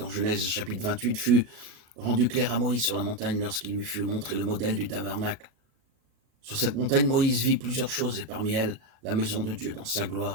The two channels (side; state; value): left; late; 37 ms